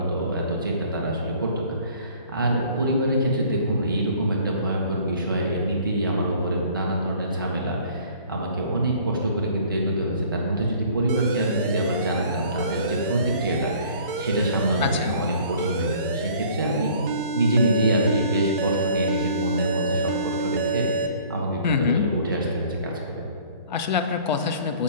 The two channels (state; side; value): inverted; both; correlation -0.53